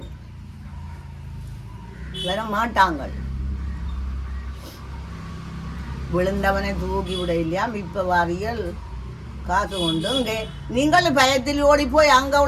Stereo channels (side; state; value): both; identical; correlation 1.00